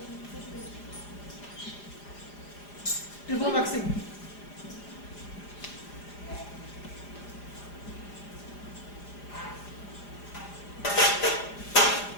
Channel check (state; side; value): late; right; 4.9 ms